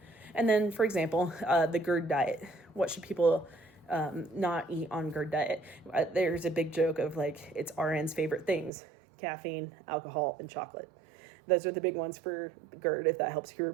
And then, for example, the GERD diet. What should people not eat on GERD diet? There's a big joke of like, it's RN's favorite things: caffeine, alcohol, and chocolate. Those are the big ones for GERD, if that helps you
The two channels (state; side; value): drops out; left; at 8.7 s